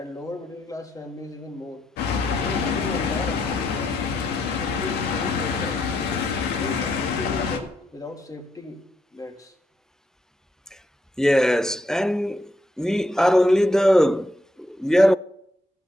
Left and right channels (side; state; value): both; normal; correlation 0.79